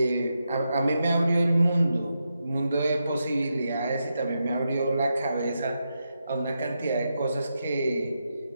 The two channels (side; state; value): both; inverted; correlation -0.86